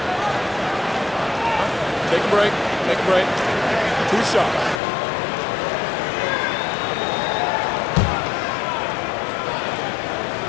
Take a break. Take a break. 2 shots.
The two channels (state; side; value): drops out; right; at 4.8 s